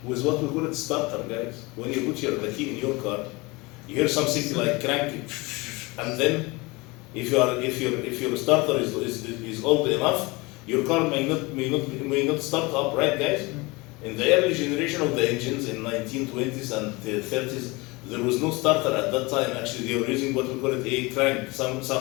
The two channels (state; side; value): quieter; right; 24.5 dB